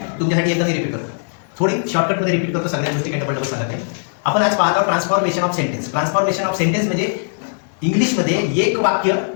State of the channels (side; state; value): right; silent; 66 dB below the other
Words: तुमच्यासाठी एकदम रिपीट करतो, थोडी शॉर्टकटमध्ये रिपीट करतो, सगळ्या गोष्टी काही डबल सांगत नाही. आपण आज पाहत आहोत transformation of sentence. Transformation of sentence म्हणजे इंग्लिशमध्ये एक वाक्य